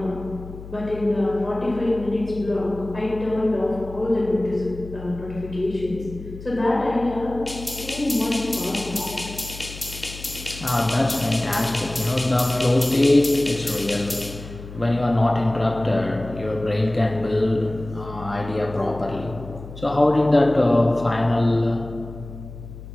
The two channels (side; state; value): left; noise; hum, 14 dB below the sound